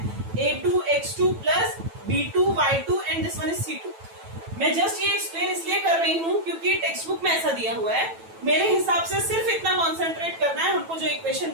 a2 x2 plus b2 y2 and this one is c2. मैं जस्ट ये एक्सप्लेन इसलिए कर रही हूँ क्योंकि टेक्स्ट बुक में ऐसा दिया हुआ है. मेरे हिसाब से सिर्फ इतना कॉन्सेंट्रेट करना है. हमको जो इक्वेशन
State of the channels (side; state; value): left; late; 9.1 ms